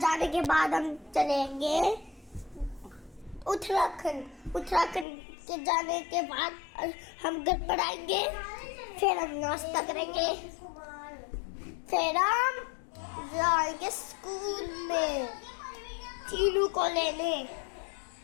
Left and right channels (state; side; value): drops out; right; at 5.1 s